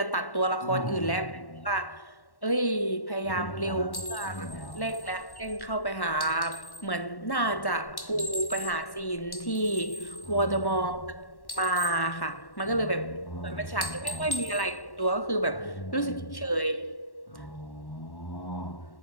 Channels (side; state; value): right; late; 1.1 ms